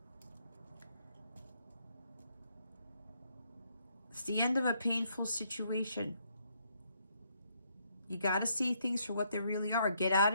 It's the end of a painful situation. You got to see things for what they really are. Get out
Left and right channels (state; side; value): inverted; both; correlation -0.73